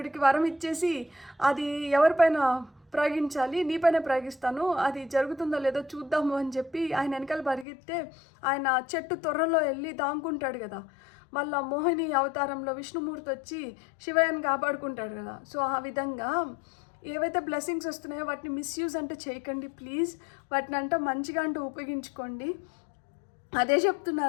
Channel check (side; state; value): right; drops out; at 7.7 s